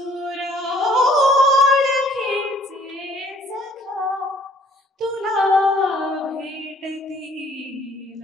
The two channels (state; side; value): normal; both; correlation 0.59